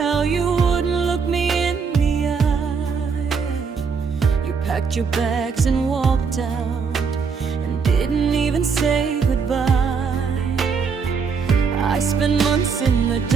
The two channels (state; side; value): quieter; left; 5.6 dB